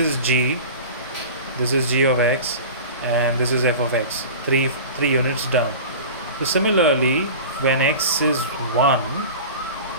g of x, and this is f of x, 3 units down. So similarly, when x is 1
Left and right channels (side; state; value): both; inverted; correlation -0.35